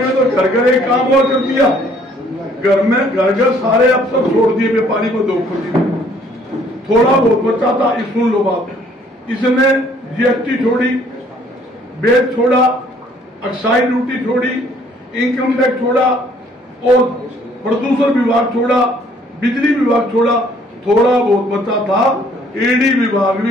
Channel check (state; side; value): normal; both; correlation 0.61